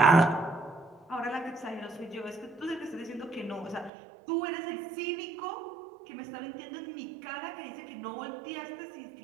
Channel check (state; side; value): drops out; left; at 3.9 s